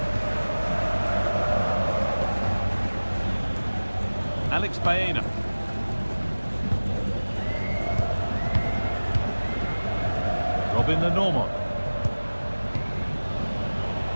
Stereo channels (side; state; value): both; inverted; correlation -1.00